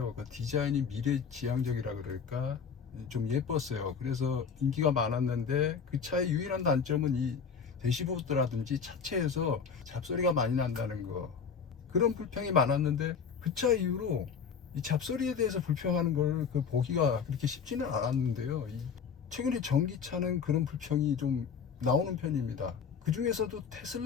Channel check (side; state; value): right; quieter; 6.3 dB